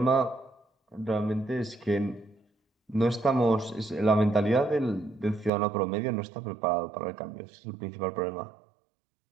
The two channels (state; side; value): drops out; left; at 5.5 s